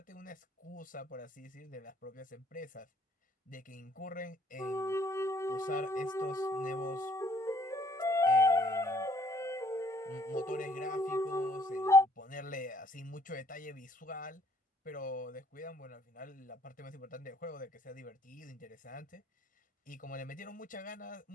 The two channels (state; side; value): normal; both; correlation 0.63